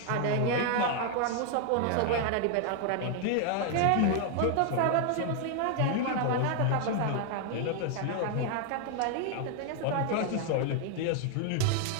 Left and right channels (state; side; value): different; both; correlation 0.00